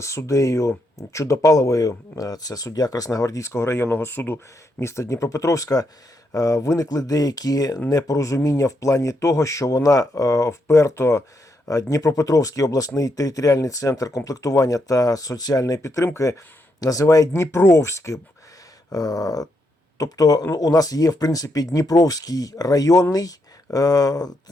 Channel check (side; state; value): both; normal; correlation 0.80